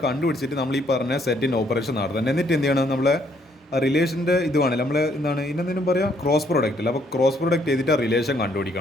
കണ്ടുപിടിച്ചിട്ട് നമ്മൾ ഈ പറഞ്ഞ സെറ്റിൻ്റെ ഓപ്പറേഷൻ നടത്തണം. എന്നിട്ട് എന്ത് ചെയ്യണം? നമ്മളെ റിലേഷൻ്റെ ഇതുമാണ് നമ്മൾ എന്താണ് ഇതിനെന്തെങ്കിലും പറയാം, ക്രോസ് പ്രോഡക്റ്റ് അല്ല. അപ്പോൾ ക്രോസ് പ്രോഡക്റ്റ് ചെയ്തിട്ട് റിലേഷൻ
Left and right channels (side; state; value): both; normal; correlation 0.68